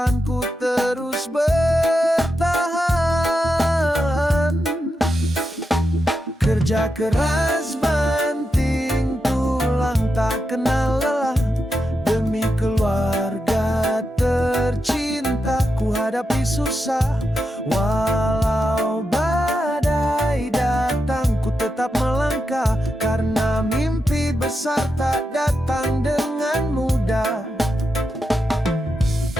terus bertahan. Kerja keras banting tulang tak kenal lelah. Demi keluarga tercinta ku hadapi susah. Walau badai datang ku tetap melangkah, karena mimpi besar tak datang dengan mudah.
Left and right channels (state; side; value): normal; both; correlation 0.87